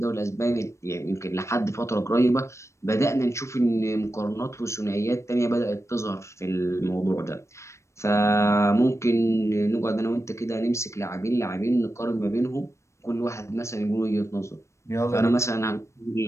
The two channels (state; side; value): late; right; 0.14 ms